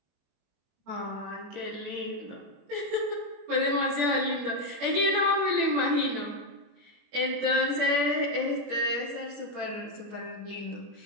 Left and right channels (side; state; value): left; late; 21 ms